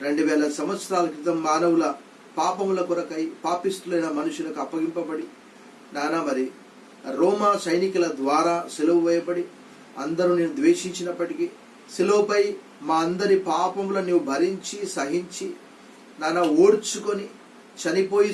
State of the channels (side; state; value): both; identical; correlation 1.00